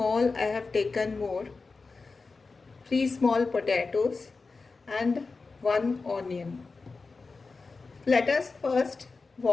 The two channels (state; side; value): quieter; right; 4.1 dB